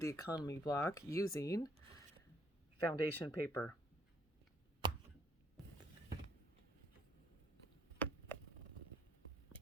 economy block using foundation paper.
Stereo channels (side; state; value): both; normal; correlation 0.67